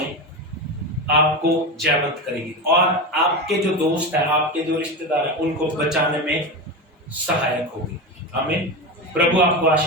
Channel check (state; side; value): normal; both; correlation 0.20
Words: आपको जयवंत करेगी और आपके जो दोस्त हैं, आपके जो रिश्तेदार हैं, उनको बचाने में सहायक होगी। आमीन। प्रभु आपको